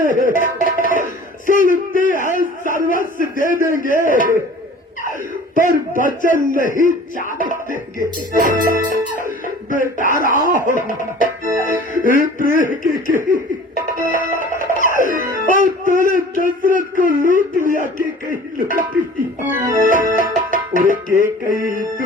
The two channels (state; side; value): normal; both; correlation 0.45